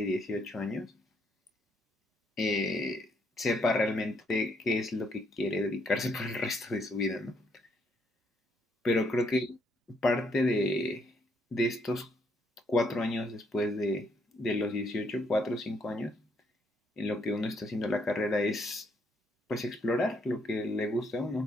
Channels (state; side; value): normal; both; correlation 0.72